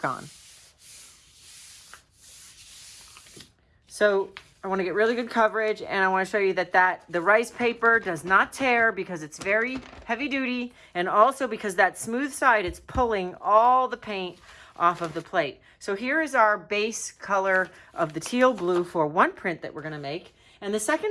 on. So I want to get really good coverage, and I want to show you that the rice paper does not tear because it's very heavy duty, and also because that smooth side, it's pulling all the paint off of the plate. So here is our base color of the teal blue for one print that we're going to make, and the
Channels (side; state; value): both; identical; correlation 1.00